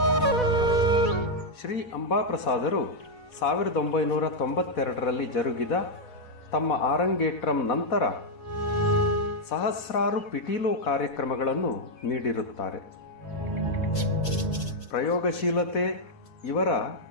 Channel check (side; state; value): right; late; 4.1 ms